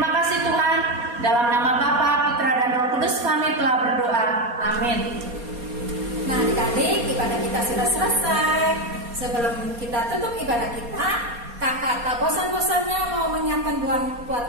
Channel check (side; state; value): left; late; 4.2 ms